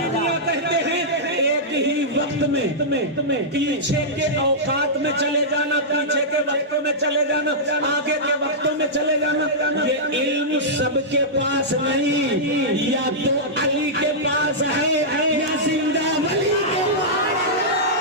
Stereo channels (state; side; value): normal; both; correlation -0.12